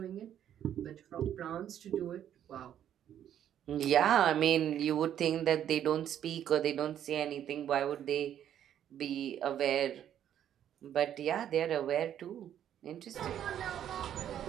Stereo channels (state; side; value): quieter; left; 10.3 dB